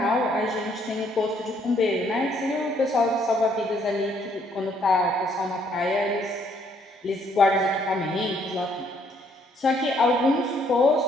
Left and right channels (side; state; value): both; normal; correlation 0.67